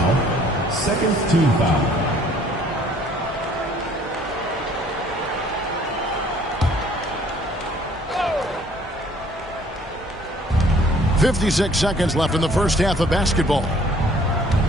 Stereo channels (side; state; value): both; normal; correlation 0.58